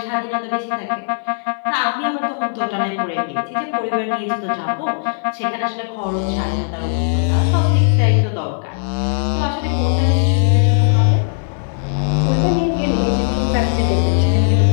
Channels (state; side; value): silent; right; 59 dB below the other